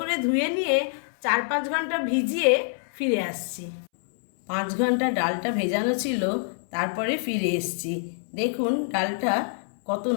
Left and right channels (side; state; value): right; silent; 61 dB below the other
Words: ধুয়ে নিয়ে 4-5 ঘন্টা ভিজিয়ে ফিরে আসছি। 5 ঘন্টা ডালটা ভেজানো ছিল, তারপরে ফিরে এসছি। দেখুন ডালটা কত